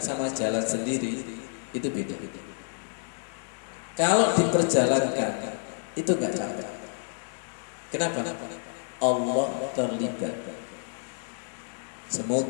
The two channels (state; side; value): silent; right; digital silence